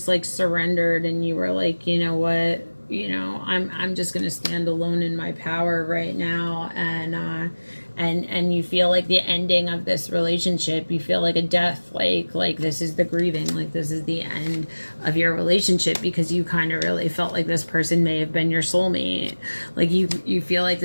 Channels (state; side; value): inverted; both; correlation -1.00